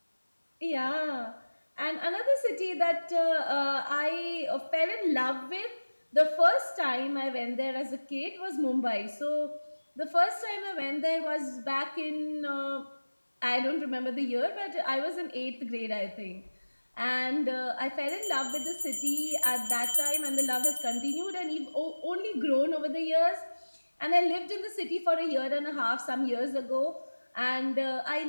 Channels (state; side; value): inverted; both; correlation -1.00